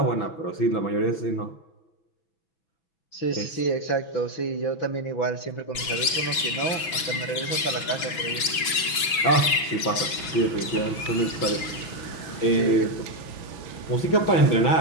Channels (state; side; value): late; right; 6.2 ms